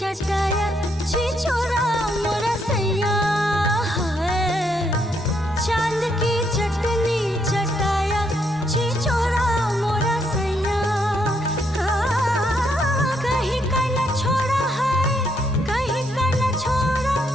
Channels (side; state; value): both; normal; correlation 0.75